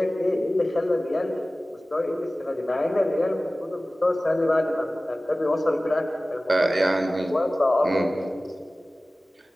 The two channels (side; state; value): both; normal; correlation 0.97